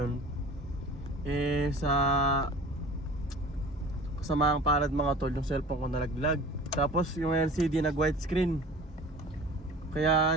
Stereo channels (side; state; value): both; normal; correlation 0.42